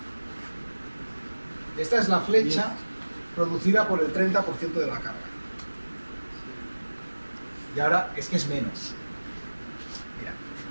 Esta es la flecha producida por el 30% de la carga. Y ahora es que es menos.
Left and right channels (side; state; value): both; inverted; correlation -1.00